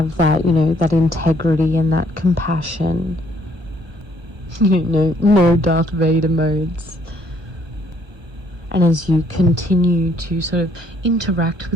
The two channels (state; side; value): late; left; 1.3 ms